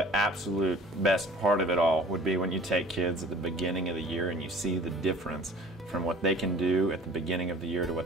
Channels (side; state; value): both; normal; correlation 0.47